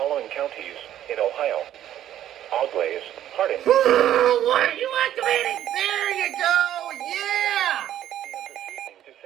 counties in Ohio: Auglaize, Hardin. What are you activating? There you go! Yeah! 6 p.m. this evening to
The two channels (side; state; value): left; quieter; 11.7 dB